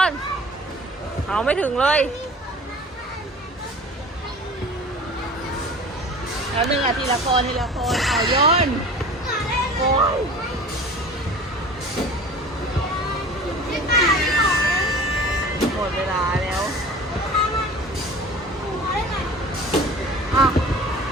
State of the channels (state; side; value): normal; both; correlation 0.41